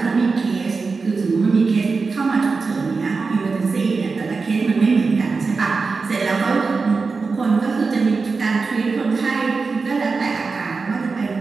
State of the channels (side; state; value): left; quieter; 4.4 dB